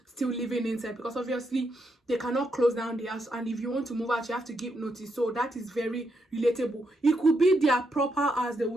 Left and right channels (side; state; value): both; normal; correlation 0.80